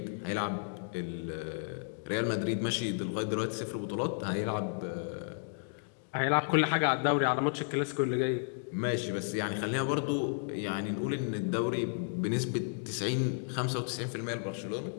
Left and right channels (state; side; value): silent; right; digital silence